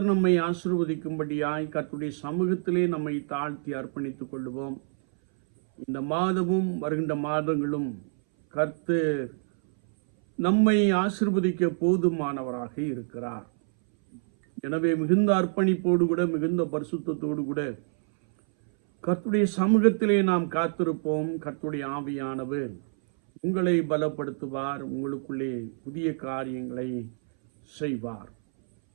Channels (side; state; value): left; silent; 60 dB below the other